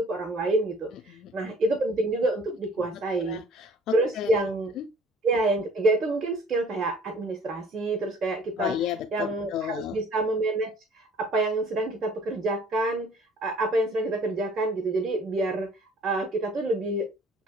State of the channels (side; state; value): both; normal; correlation 0.53